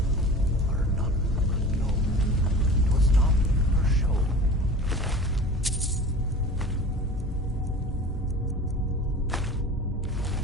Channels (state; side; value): normal; both; correlation 0.39